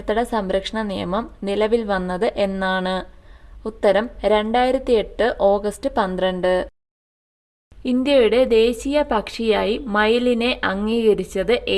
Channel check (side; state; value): both; identical; correlation 1.00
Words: സംരക്ഷണ നിയമം നിലവിൽ വന്നത് എന്നാണ്? ഉത്തരം 2008 ഓഗസ്റ്റ് 12. ഇന്ത്യയുടെ ദേശീയ പക്ഷിയായി മയിലിനെ അംഗീകരിച്ചത്